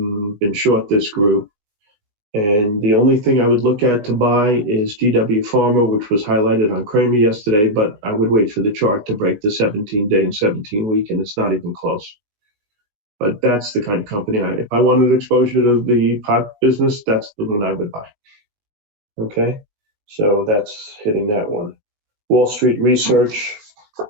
been short this group. And the only thing I would look at to buy is GW Pharma, which was highlighted on Kramer yesterday, but I would wait for the chart to break the 17-day and 17-week, and it's not even close. But that's the kind of company, if I wanted exposure to the pot business, that's the one I would buy. Okay, so that's hitting that one. Wall Street Research,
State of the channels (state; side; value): late; left; 19 ms